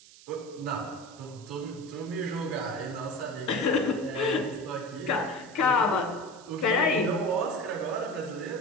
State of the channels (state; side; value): noise; right; hiss, 21 dB below the sound